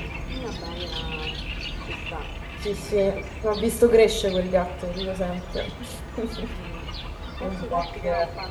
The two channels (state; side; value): identical; both; correlation 1.00